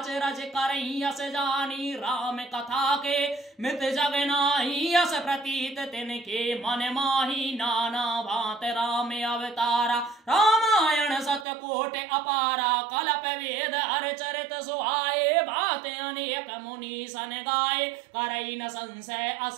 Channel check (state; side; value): drops out; left; at 11.5 s